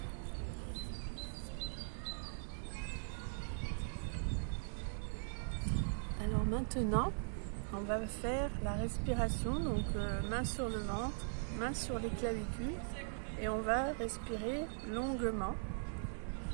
Alors maintenant, on va faire la respiration, donc main sur le ventre, main sur les clavicules, et on va respirer longuement.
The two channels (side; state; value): left; silent; digital silence